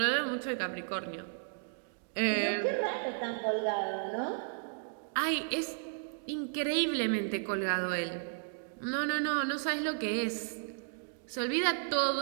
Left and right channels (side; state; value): left; silent; digital silence